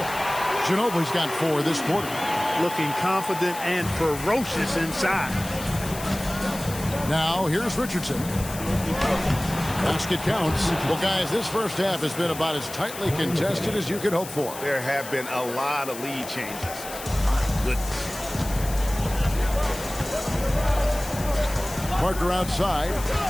Ginobili's got 4 this quarter. Looking confident and ferocious inside. Now here's Richardson. Basket counts. Well, guys, this first half has been about as tightly contested as you could hope for. There have been a lot of lead changes. Goodness. Parker outside.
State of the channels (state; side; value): noise; left; hiss, 12 dB below the sound